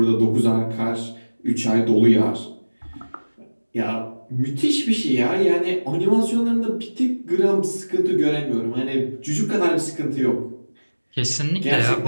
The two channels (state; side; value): inverted; both; correlation -1.00